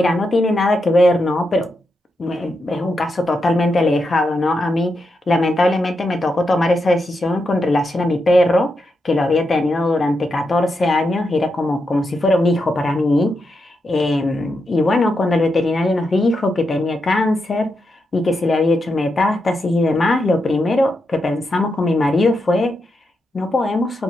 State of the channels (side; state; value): both; normal; correlation 0.85